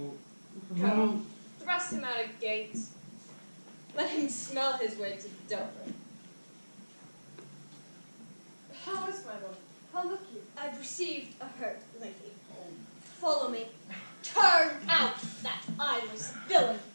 go. Thrust him out of gate. Let him smell his way to Dover. How is my lord? How look you? I've received a hurt, lady. Follow me. Turn out that eyeless villain.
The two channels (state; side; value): inverted; both; correlation -1.00